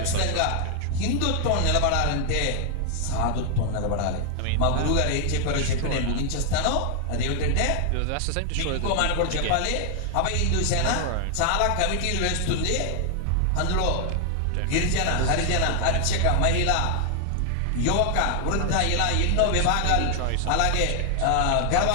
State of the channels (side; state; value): both; different; correlation 0.00